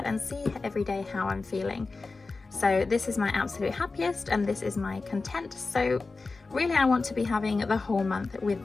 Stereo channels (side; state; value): right; quieter; 3.8 dB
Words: and see every day how I'm feeling. So this is my absolute happiest, and this is my content. So really I want to be having the whole month